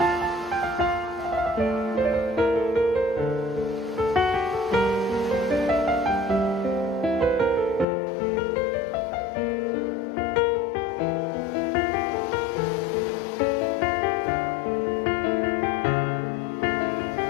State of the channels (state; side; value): drops out; right; at 7.9 s